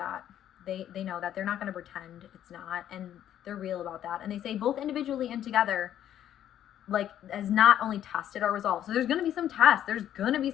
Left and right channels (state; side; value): quieter; right; 11.0 dB